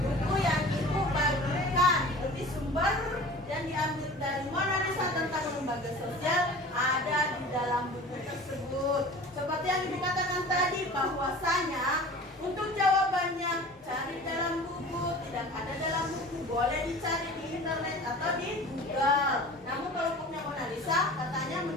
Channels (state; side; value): normal; both; correlation 0.40